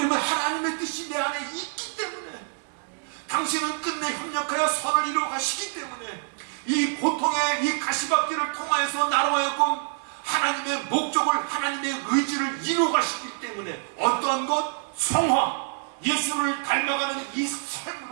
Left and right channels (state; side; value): silent; left; digital silence